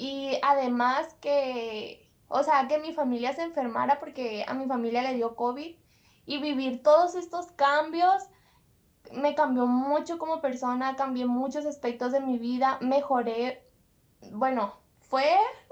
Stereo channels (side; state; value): both; identical; correlation 1.00